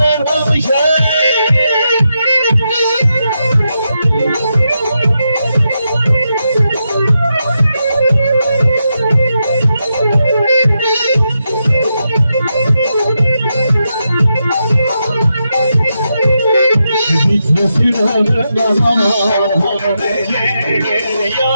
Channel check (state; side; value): inverted; both; correlation -0.85